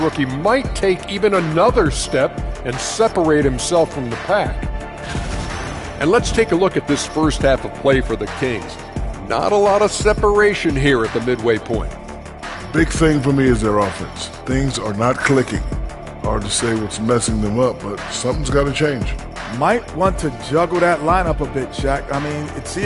might take even another step and separate himself from the pack. And let's take a look at this first half of play for the Kings. Not a lot of separation here at the midway point. Big thing for me is their offense. Things are not clicking. Hard to say what's messing them up, but something's got to change. Might want to juggle that lineup a bit, Shaq. I mean, see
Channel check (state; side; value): identical; both; correlation 1.00